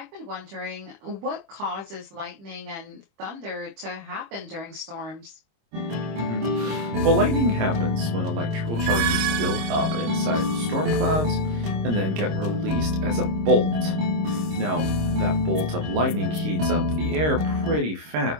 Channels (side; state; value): left; late; 26 ms